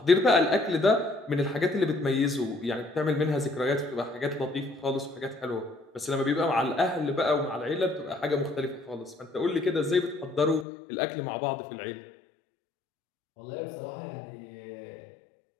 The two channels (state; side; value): drops out; right; at 10.7 s